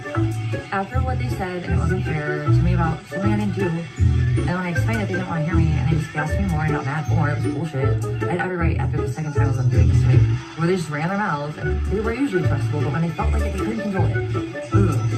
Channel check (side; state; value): both; identical; correlation 1.00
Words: after what they said, and it wasn't fair to me about something I didn't do, and when I explained it, they didn't want to hear me, and they just gassed me more and got mad more. It was bullshit. I had every right after the second time I was doing this to me, where they just ran their mouths, and they were usually trustable, but when they felt like it, they couldn't control it. Ugh.